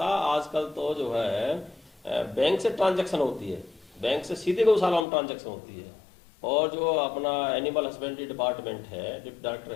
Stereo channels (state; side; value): drops out; right; at 5.1 s